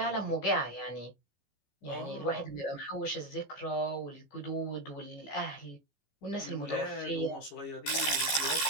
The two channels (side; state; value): right; late; 14 ms